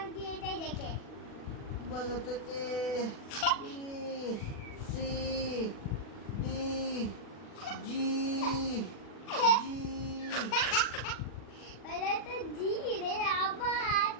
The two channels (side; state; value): right; late; 40 ms